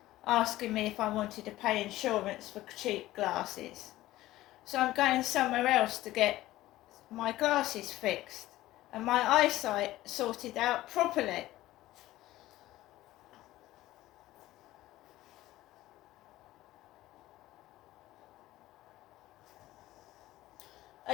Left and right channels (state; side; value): quieter; right; 16.0 dB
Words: asking me if I wanted to pay insurance for cheap glasses. So I'm going somewhere else to get my glasses fixed and my eyesight sorted out properly.